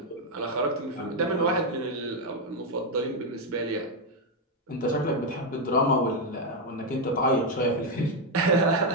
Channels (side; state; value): both; normal; correlation 0.03